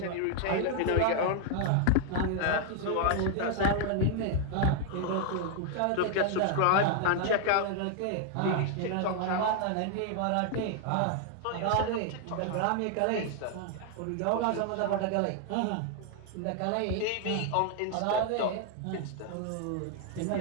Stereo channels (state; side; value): different; both; correlation 0.00